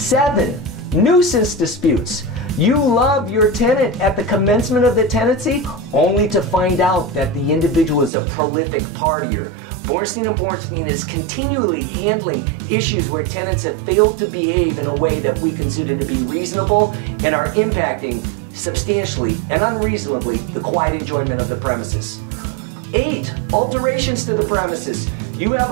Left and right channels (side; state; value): left; drops out; at 8.1 s